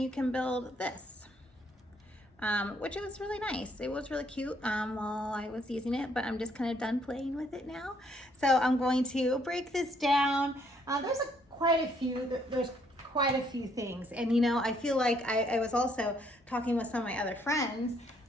you can build this. Which was really nice. It was really cute while I was using it, but I'm just kind of done playing with it now. So I'm going to break this down. There's quite a few things. And I feel like I was also talking with some of my other friends.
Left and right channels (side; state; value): both; normal; correlation 0.69